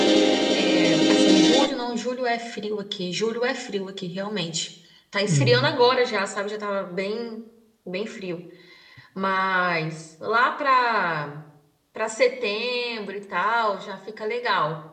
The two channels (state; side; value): identical; both; correlation 1.00